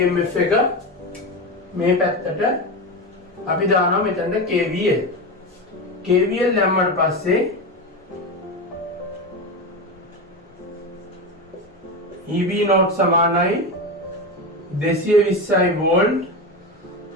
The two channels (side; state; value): both; normal; correlation 0.19